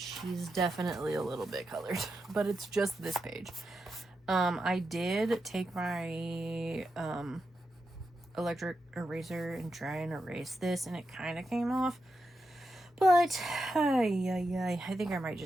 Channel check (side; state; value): both; normal; correlation 0.87